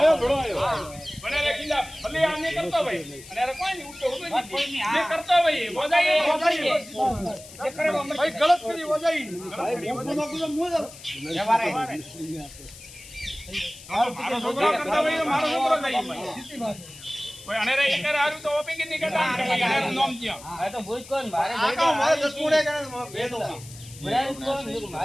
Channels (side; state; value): left; noise; hiss, 17 dB below the sound